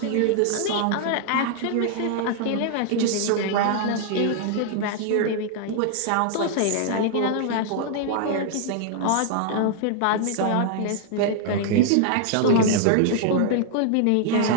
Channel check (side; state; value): both; different; correlation 0.00